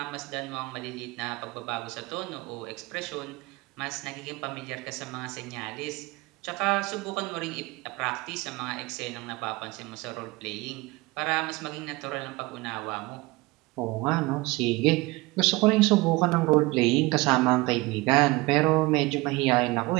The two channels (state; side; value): quieter; left; 22.7 dB